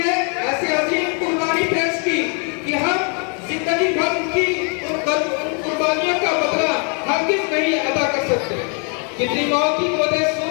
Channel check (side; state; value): right; quieter; 38.7 dB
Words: ऐसी अजीम कुर्बानी पेश की कि हम जिंदगी भर उन कुर्बानियों का बदला हरगिज़ नहीं अदा कर सकते। कितनी माओ की गोदें